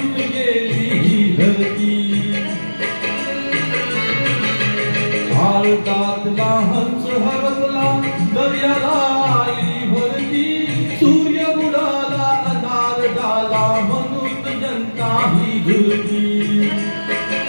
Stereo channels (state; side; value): inverted; both; correlation -1.00